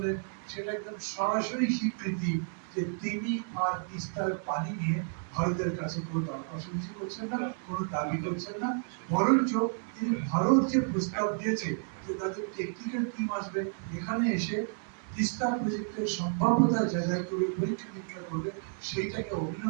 সেটা একদম সরাসরি স্বীকৃতি যে তিনি আর তিস্তার পানি নিয়ে ভারতের কাছে কোনো দরখাস্ত করছেন না, কোনো দাবি করছেন না। বরঞ্চ তিনি ভারত যে প্রস্তাব দিয়েছে যে তাদের টেকনিক্যাল টিম আসবে এখানে এসে তিস্তা প্রজেক্টের সম্ভাব্যতা যাচাই করে পরীক্ষা নিরীক্ষা করবে, সেইটাকে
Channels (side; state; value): left; silent; 57 dB below the other